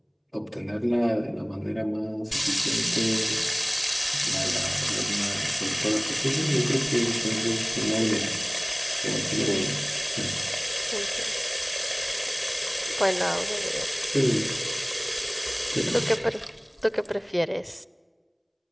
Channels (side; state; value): both; identical; correlation 1.00